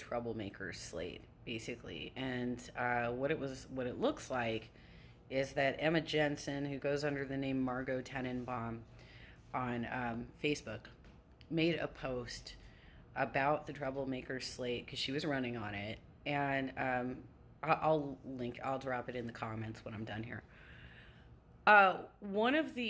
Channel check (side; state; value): both; identical; correlation 1.00